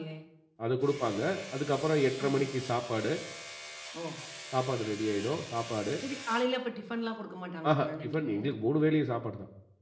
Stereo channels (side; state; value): both; identical; correlation 1.00